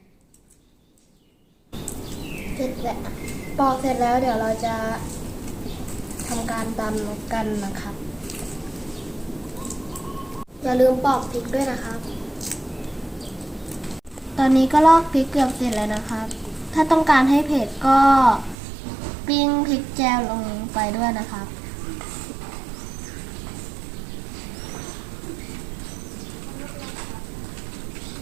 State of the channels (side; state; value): left; drops out; at 18.6 s